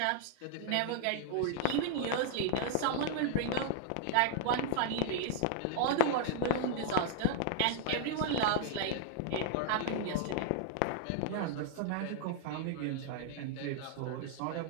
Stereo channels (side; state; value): both; different; correlation -0.01